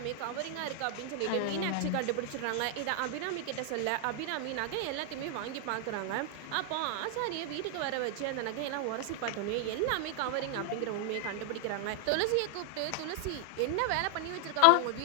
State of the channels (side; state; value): both; different; correlation 0.00